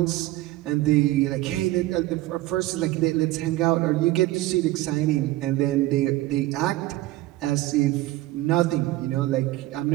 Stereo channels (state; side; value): quieter; left; 16.8 dB